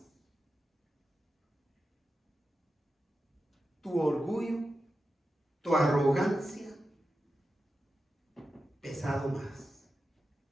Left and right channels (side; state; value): both; normal; correlation 0.91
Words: Tu orgullo, tu arrogancia, pesado más.